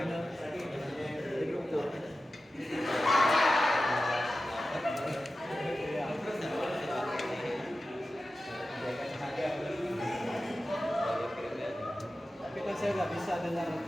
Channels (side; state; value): both; normal; correlation 0.94